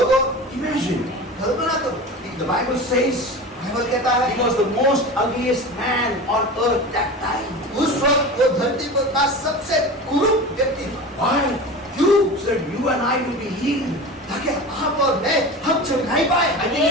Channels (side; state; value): both; normal; correlation 0.32